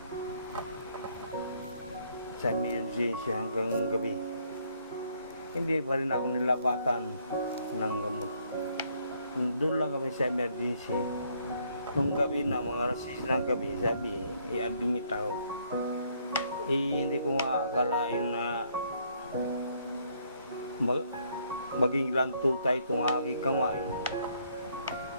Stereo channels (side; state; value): both; inverted; correlation -0.68